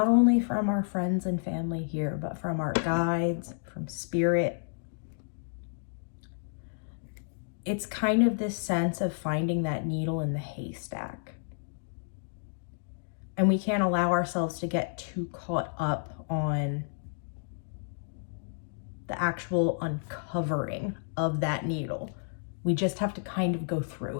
only from our friends and family here, but from our guides, from spirit. It's kind of this sense of finding that needle in the haystack. And we can't allow ourselves to get too caught up on the actual uncovering of that needle. We just have to kind of go through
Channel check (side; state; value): right; silent; digital silence